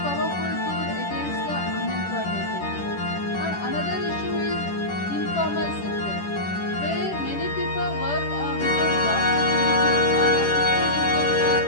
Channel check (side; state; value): right; late; 10 ms